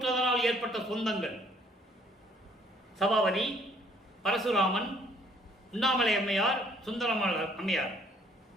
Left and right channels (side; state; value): both; normal; correlation 0.61